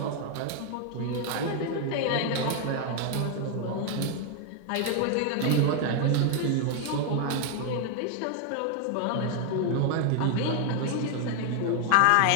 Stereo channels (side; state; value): both; different; correlation 0.01